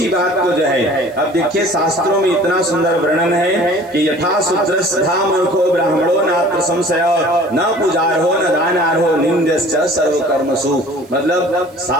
बात को जो है, अब देखिए शास्त्रों में इतना सुंदर वर्णन है कि यथा शूद्रस्था मूर्खो ब्राह्मणो नात्र संशय न पुजारहो न दानार्हो निंद्यश्च सर्व कर्मसु। मतलब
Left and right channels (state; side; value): noise; right; hiss, 29 dB below the sound